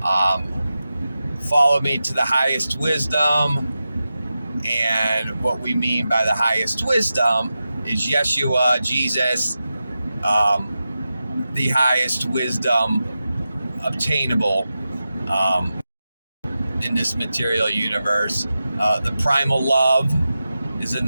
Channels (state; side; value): inverted; both; correlation -0.92